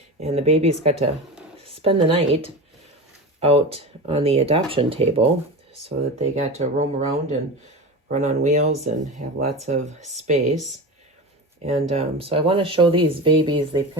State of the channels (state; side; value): normal; both; correlation 0.27